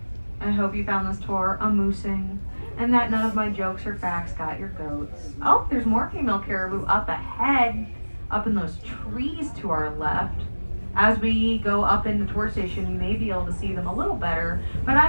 I hope you found this tour amusing and that none of my jokes or facts got your goats. Oh, there's more female caribou up ahead, up in those trees to our left. As we go up in the tour station, you may be able to see them a little better, but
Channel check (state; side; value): inverted; both; correlation -1.00